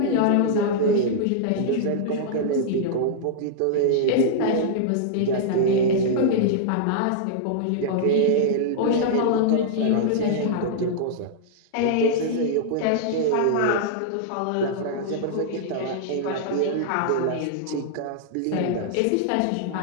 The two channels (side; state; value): both; different; correlation -0.02